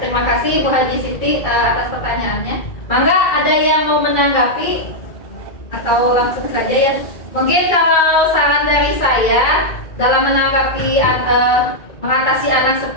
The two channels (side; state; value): right; late; 2.3 ms